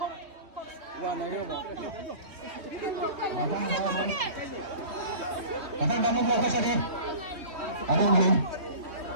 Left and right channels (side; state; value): left; late; 3.2 ms